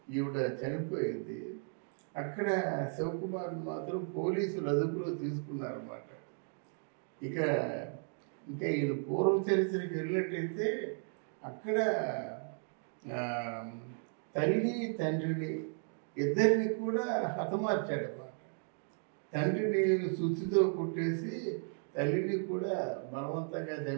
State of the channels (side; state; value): left; silent; 54 dB below the other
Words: ఈవిడ చనిపోయింది. అక్కడ శివకుమార్ మాత్రం పోలీసులు అదుపులో తీసుకున్నారన్నమాట. ఇంకా ఈయన పూర్వ చరిత్రకి వెళ్ళినట్టయితే అక్కడ తల్లి తండ్రిని ఇద్దరిని కూడా హతమార్చాడన్నమాట. తండ్రిని సుత్తితో కుట్టేసి తల్లిని కూడా బలవంతంగా